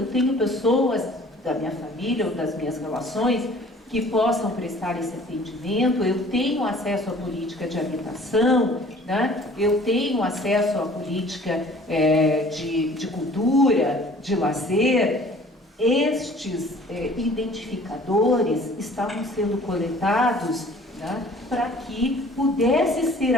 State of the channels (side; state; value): both; normal; correlation 0.51